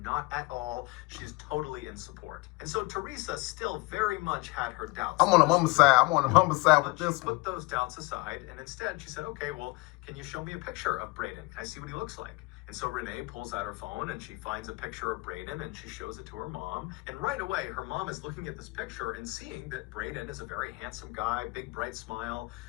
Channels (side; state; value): right; quieter; 24.4 dB